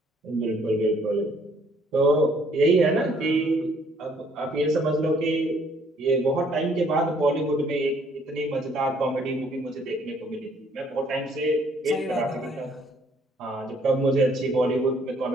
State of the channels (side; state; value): both; normal; correlation 0.63